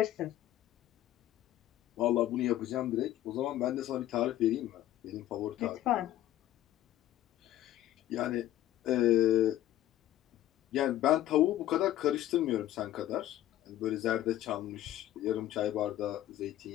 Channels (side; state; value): right; quieter; 13.5 dB